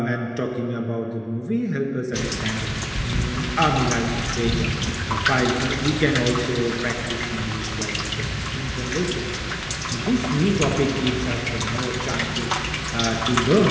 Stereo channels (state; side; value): identical; both; correlation 1.00